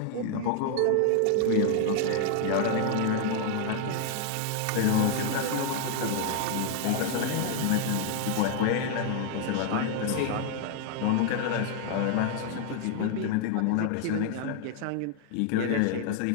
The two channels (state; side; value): different; both; correlation 0.00